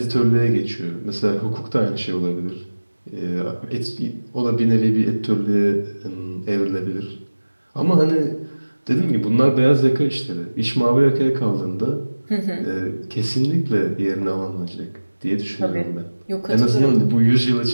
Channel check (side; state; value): both; inverted; correlation -1.00